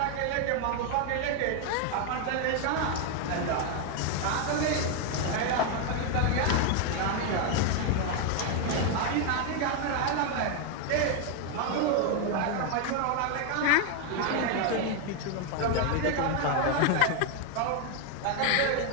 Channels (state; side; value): different; both; correlation 0.01